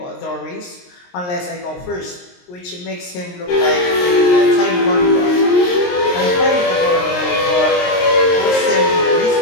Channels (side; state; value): right; late; 22 ms